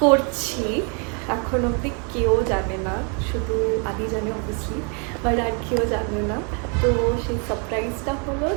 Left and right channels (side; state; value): left; quieter; 37.5 dB